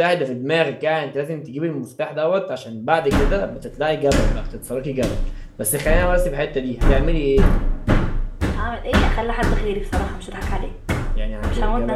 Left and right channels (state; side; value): identical; both; correlation 1.00